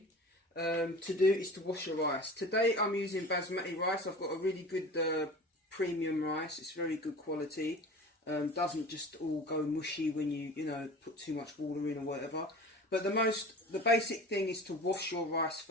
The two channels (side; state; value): both; normal; correlation 0.38